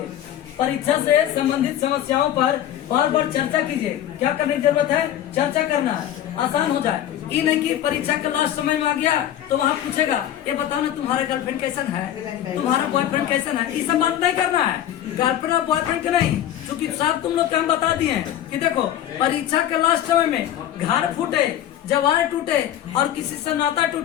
परीक्षा से संबंधित समस्याओं पर बार बार चर्चा कीजिए। क्या करने की जरूरत है? चर्चा करना है, आसान हो जाए। ये नहीं कि परीक्षा के लास्ट समय में आ गया तो वहाँ पूछेगा ये बताओ ना तुम्हारा गर्लफ्रेंड कैसन है, तुम्हारा बॉयफ्रेंड कैसन है। ये सब बात नहीं करना है, गर्लफ्रेंड और बॉयफ्रेंड के नहीं, क्योंकि साहब तुम लोग क्या बता दिए हैं कि देखो परीक्षा के लास्ट समय में घर फूटे, जवान टूटे और किसी से नाता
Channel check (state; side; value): quieter; right; 11.5 dB